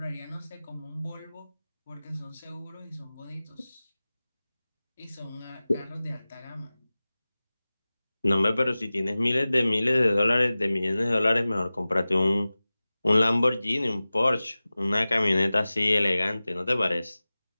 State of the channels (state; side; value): inverted; both; correlation -0.97